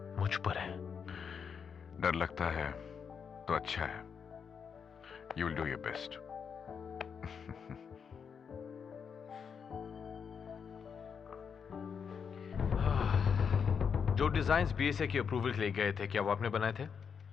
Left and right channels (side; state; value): right; quieter; 6.6 dB